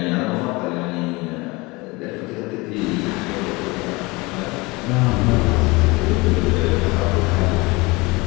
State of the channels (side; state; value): right; quieter; 24.2 dB